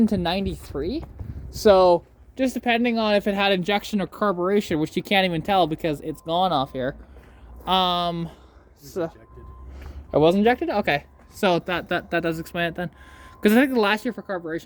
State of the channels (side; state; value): both; identical; correlation 1.00